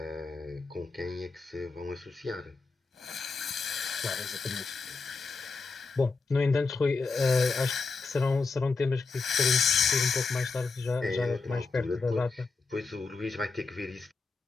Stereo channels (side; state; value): right; quieter; 4.3 dB